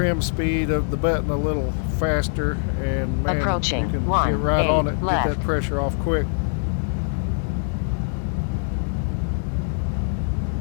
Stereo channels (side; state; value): right; silent; digital silence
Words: speed of the button a little faster, and man, Approaching you can 1, get right 8 on it, left. get that pressure off quick.